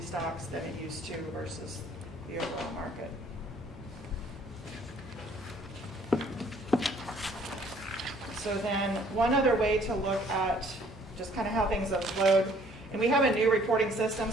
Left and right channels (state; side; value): normal; both; correlation 0.59